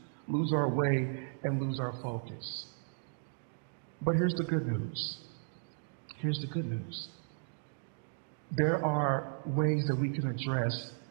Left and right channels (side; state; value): left; silent; digital silence